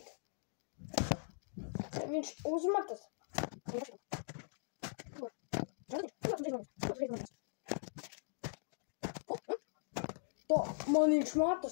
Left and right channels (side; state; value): right; silent; digital silence